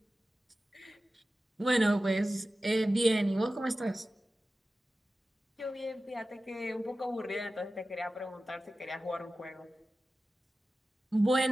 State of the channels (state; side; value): normal; both; correlation 0.95